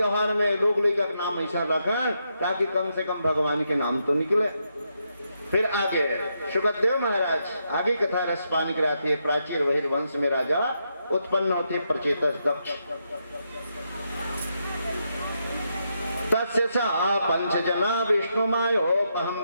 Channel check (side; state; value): both; inverted; correlation -0.81